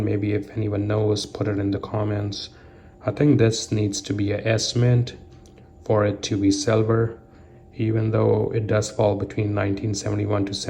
Maybe if anyone knows, put it in the comments. I think this needs to be a S mint for it to be silver, even though it does fall between 1971 to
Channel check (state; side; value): identical; both; correlation 1.00